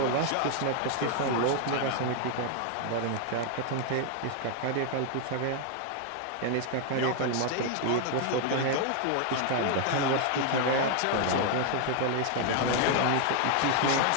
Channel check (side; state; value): both; different; correlation 0.00